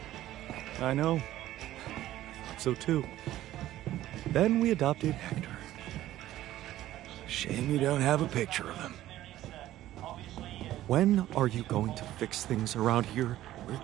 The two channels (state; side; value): quieter; left; 14.1 dB